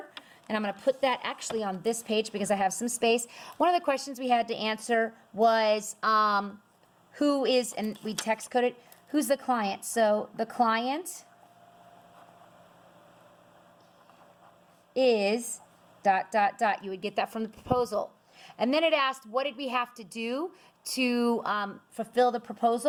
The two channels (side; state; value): both; identical; correlation 1.00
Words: and I'm going to put that actually on this page because I have some space. One of the questions we had to answer was who is, and we text coded, who's the client? So the client is ... You would get that from the proposal. And then it asked, what did we have to do to fulfill the